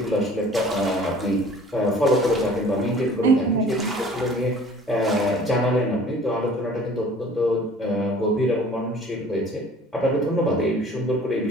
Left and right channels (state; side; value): normal; both; correlation 0.49